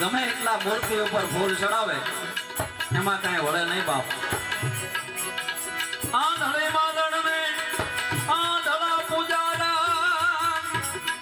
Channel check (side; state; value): both; identical; correlation 1.00